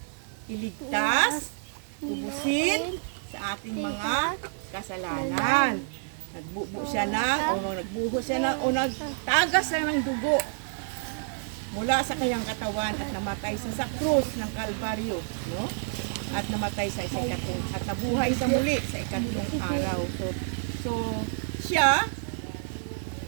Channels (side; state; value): left; silent; digital silence